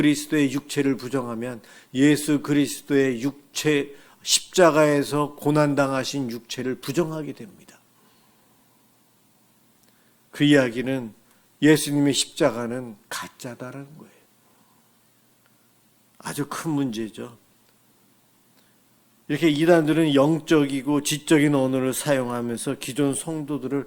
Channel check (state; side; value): identical; both; correlation 1.00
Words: 육체를 부정하면 예수 그리스도의 육체, 십자가에서 고난당하신 육체를 부정하게 됩니다. 그 이야기는 예수님의 십자가는 가짜다라는 거예요. 아주 큰 문제죠. 이렇게 이단들은 영적이고 지적인 언어를 사용하면서 기존